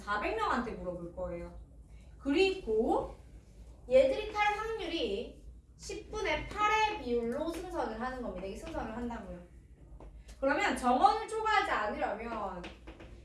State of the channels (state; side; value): identical; both; correlation 1.00